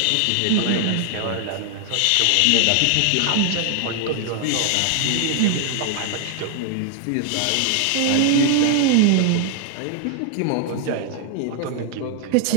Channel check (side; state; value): both; different; correlation 0.00